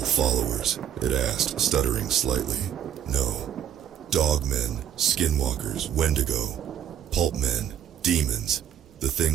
it asked, stuttering slightly. "No. Dogmen, skinwalkers, wendigo, pulp men, demons, the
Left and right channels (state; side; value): quieter; left; 9.7 dB